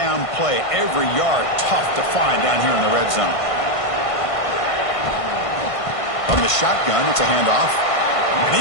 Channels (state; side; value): late; right; 1.5 ms